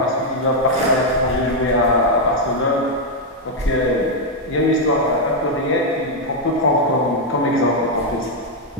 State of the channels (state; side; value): normal; both; correlation 0.00